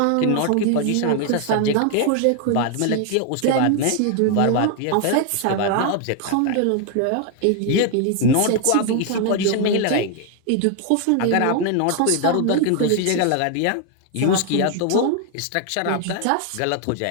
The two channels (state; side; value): different; both; correlation 0.00